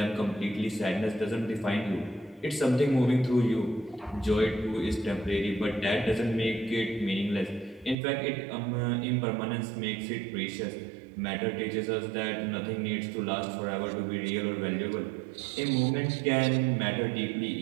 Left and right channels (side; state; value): left; drops out; at 8.0 s